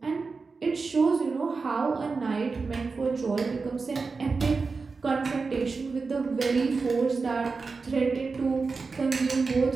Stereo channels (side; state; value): left; quieter; 4.4 dB